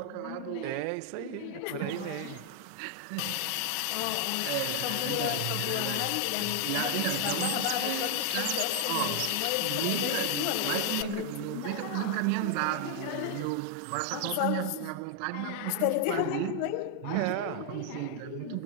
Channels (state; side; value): different; both; correlation 0.00